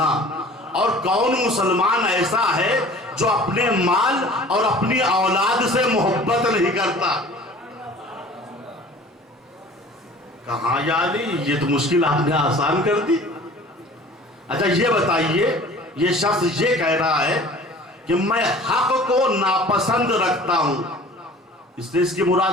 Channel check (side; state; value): both; normal; correlation 0.46